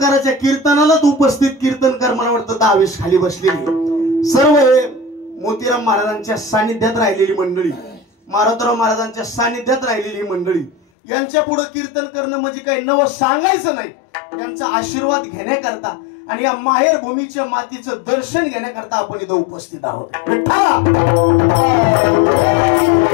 कीर्तनालाच उपस्थित कीर्तनकार मला वाटतं 10-20 खाली बसलेली सर्व हे मोतीराम महाराजांच्या सानिध्यात राहिलेली मंडळी मारोतराव महाराजांच्या सानिध्यात राहिलेली मंडळी. यांच्या पुढे कीर्तन करणं म्हणजे काही नवं सांगायचं नाही. त्यांचा आशीर्वाद घेण्याकरता आणि या माहेर भूमीच्या मातीचं दर्शन घेण्याकरता आपण इथं उपस्थित आहोत.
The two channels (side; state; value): right; drops out; at 10.8 s